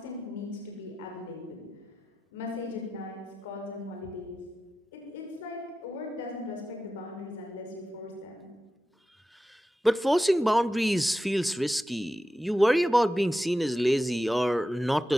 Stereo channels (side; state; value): both; normal; correlation 0.92